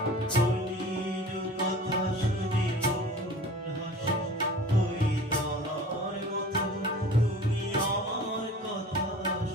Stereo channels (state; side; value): normal; both; correlation 0.42